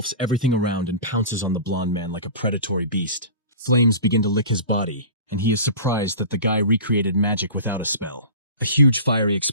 everything around and pounces on the blonde man like a predatory beast. Flames begin to lick his body, and he is surprised that the guy recreated magic without a spell. A huge fiery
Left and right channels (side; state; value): both; inverted; correlation -0.36